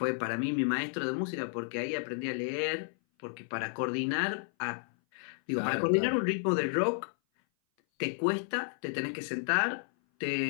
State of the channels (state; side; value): silent; right; 57 dB below the other